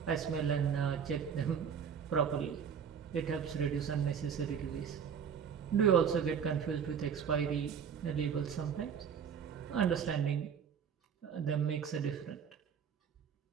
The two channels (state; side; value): quieter; left; 7.3 dB